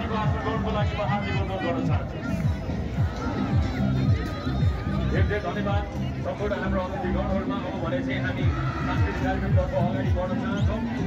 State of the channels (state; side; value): identical; both; correlation 1.00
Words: आसन ग्रहणको लागि म हार्दिक अनुरोध गर्न चाहन्छु। धेरै धेरै धन्यवाद। सम्पूर्ण हाम्रो अतिथिगणहरूमा अब भने चाहिँ हामी सांस्कृतिक कार्यक्रमतर्फ अगाडि बढ्न चाहन्छौँ।